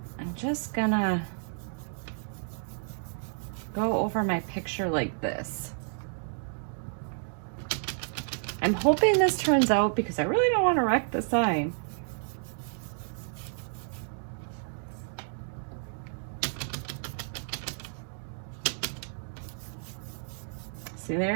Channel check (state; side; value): silent; left; 57 dB below the other